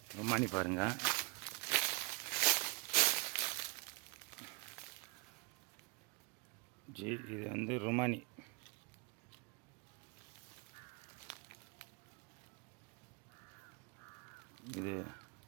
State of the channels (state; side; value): quieter; left; 27.3 dB